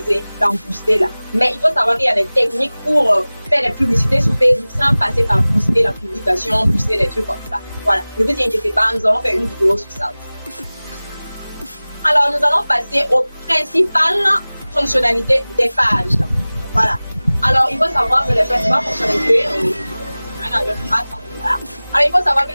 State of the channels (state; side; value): inverted; both; correlation -0.99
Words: dans Booster là. Mais il faut savoir qu'il y a des techniques pour faire des publicités sur Facebook sans passer par Booster la publication, Booster des trucs comme ça. Voilà. Ne vous inquiétez pas, nous allons faire une vidéo sur ça. Alors, nous allons passer aux principales fonctionnalités des pages. Voilà. Alors, il faut savoir que les principales fonctionnalités, Alors, il faut savoir que